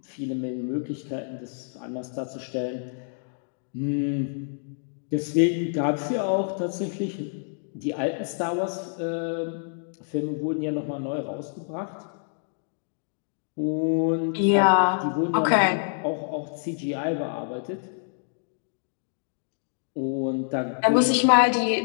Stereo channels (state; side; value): silent; right; digital silence